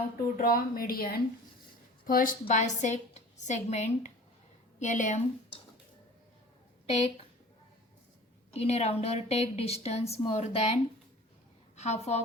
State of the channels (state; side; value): normal; both; correlation 0.43